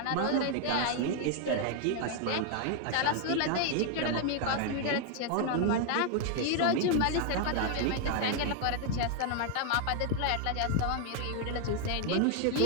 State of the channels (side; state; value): both; different; correlation 0.00